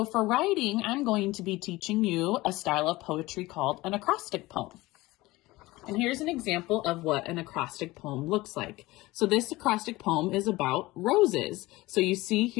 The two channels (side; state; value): right; quieter; 19.6 dB